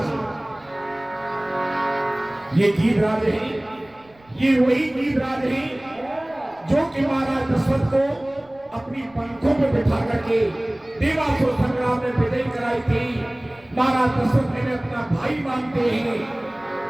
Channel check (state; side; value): noise; right; rumble, 30 dB below the sound